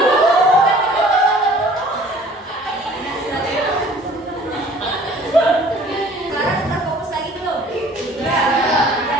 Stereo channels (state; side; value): normal; both; correlation 0.52